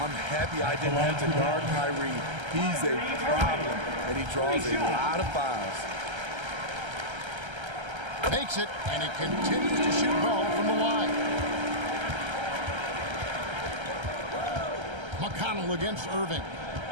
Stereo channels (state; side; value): late; left; 1.3 ms